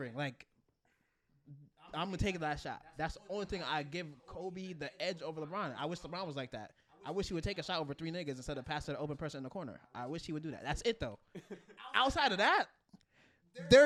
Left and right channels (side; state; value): both; identical; correlation 1.00